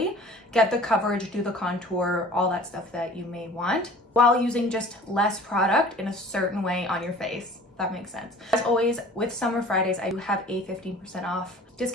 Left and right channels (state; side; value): normal; both; correlation 0.46